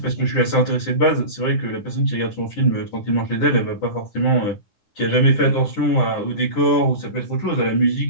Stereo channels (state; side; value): late; right; 9.9 ms